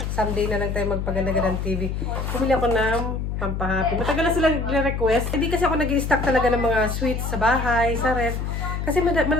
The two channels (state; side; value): noise; left; hum, 3 dB below the sound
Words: Someday na lang tayo magpaganda ng TV. Bumili ako ng pampahappy. Matagal na sila nire-request. Hindi kasi ako nag-i-stock talaga ng mga sweets sa bahay, sa ref. Kasi